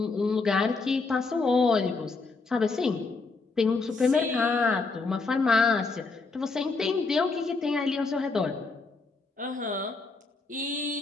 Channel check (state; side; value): quieter; right; 4.0 dB